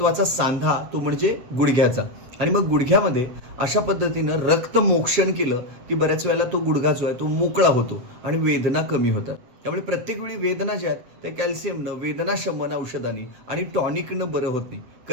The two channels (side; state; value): left; late; 8.0 ms